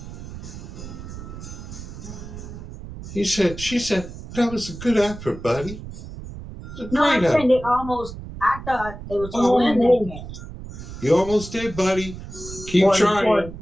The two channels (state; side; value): noise; right; rumble, 12 dB below the sound